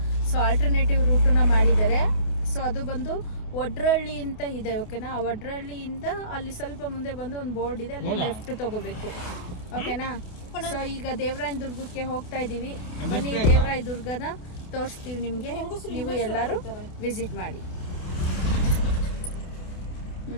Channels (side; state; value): right; late; 28 ms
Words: ಸೊ ಆಲ್ಟರ್ನೇಟಿವ್ ರೂಟನ್ನ ಮಾಡಿದ್ದಾರೆ. ಸೊ ಅದು ಬಂದು ಒಡ್ರಳ್ಳಿ ಅಂತ ಇದೆ, ಓಕೆನಾ. ಆ ಒಡ್ರಳ್ಳಿಯಿಂದ ಅಲ್ಲಿ ಸ್ವಲ್ಪ ಮುಂದೆ ಬಂದು ಒಂದು ಬೋರ್ಡ್ ಇದೆ, ಅಲ್ಲಿ ಲೆಫ್ಟ್ ತಗೋಬೇಕು, ಓಕೆನಾ. ಸೊ ಈಗ ದೇವರಾಯನ ದುರ್ಗಕ್ಕೆ ಹೋಗ್ತಾ ಇದೀವಿ. ಬನ್ನಿ, ದೇವರಾಯ ದುರ್ಗನ ತೋರಿಸ್ತೀವಿ ನಿಮ್ಗೆ, ನೀವು ಎಲ್ಲರೂ ವಿಸಿಟ್ ಮಾಡಿ.